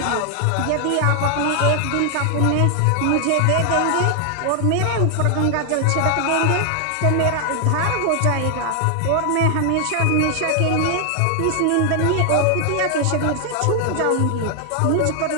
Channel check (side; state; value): both; different; correlation 0.00